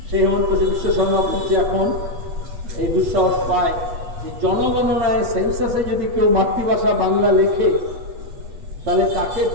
সেই হেমন্ত বিশ্ব শর্মা বলছে এখন এই দুঃসাহস পায় যে জনগণনায় সেন্সাসে যদি কেউ মাতৃভাষা বাংলা লেখে তাহলে তাকে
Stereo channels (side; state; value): left; late; 8.2 ms